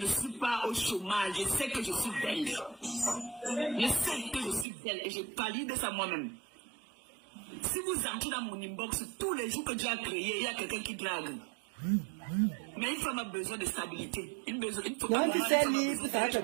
suis pas au chômage, je sais que je suis belle. Je sais que je suis belle et je valide ça moi-même. Si vous entrez dans mon inbox, tous les jours que Dieu a créé, il y a quelqu'un qui drague. Mais une femme a besoin de stabilité. Une Non, tu sais, libre, ça va te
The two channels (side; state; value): left; drops out; at 4.7 s